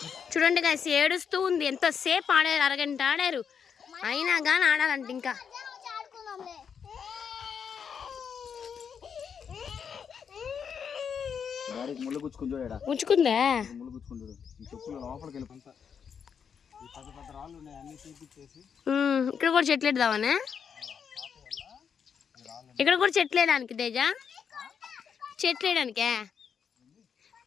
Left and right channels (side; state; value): right; quieter; 7.1 dB